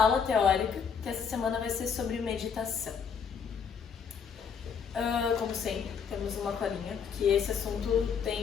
teórica, que essa semana vai ser sobre meditação. Como sempre, temos uma colinha, que esse assunto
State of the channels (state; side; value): quieter; right; 6.6 dB